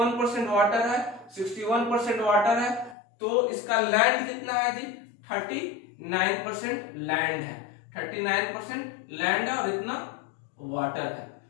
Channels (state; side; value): drops out; right; at 3.0 s